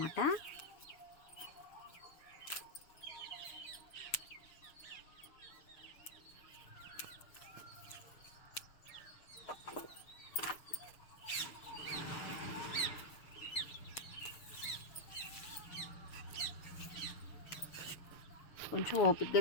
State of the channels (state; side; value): late; right; 6.7 ms